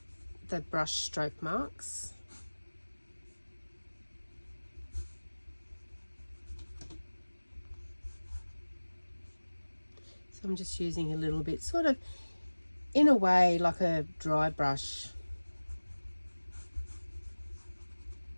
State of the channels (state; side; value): inverted; both; correlation -1.00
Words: the brush stroke marks. So I'm just using a little bit, sort of in a way like a dry brush.